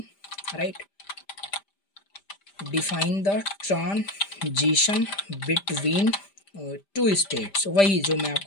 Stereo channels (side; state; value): right; late; 5.0 ms